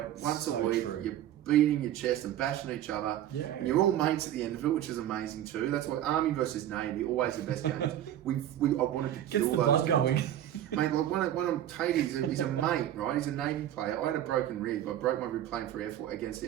once a week. You're beating your chest and bashing each other, and you're all mates at the end of it, which is amazing too. That's why Army versus Navy, always the best games. I wanted to kill those guys. Mate, like one of Tatey, he's a mate, right? He's a Navy player. I had a broken rib. I broke my rib playing for against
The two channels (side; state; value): left; quieter; 11.8 dB